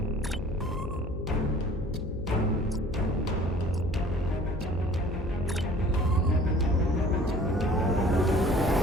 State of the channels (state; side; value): noise; left; hum, 8 dB below the sound